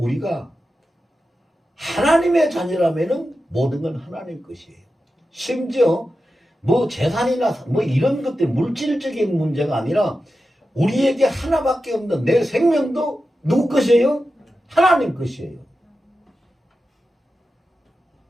하나님의 자녀라면은 모든 건 하나님 것이에요. 심지어 뭐 재산이나 뭐 이런 것들 물질적인 문제가 아니라 우리에게 하나밖에 없는 내 생명도 누구 것이에요? 하나님 것이에요.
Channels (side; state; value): both; normal; correlation 0.91